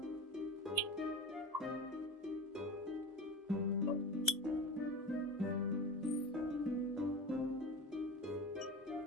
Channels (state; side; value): normal; both; correlation 0.28